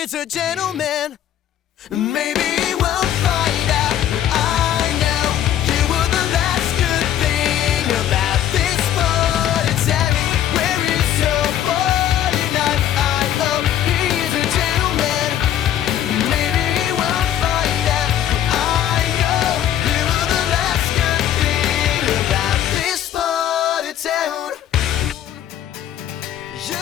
a gentleman. Maybe we'll find out. I know you were the last good thing about this morning town. Where is your 49? I hope he's a gentleman. Maybe we'll find out. I know you were the last good thing about this morning town. You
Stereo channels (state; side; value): quieter; right; 11.0 dB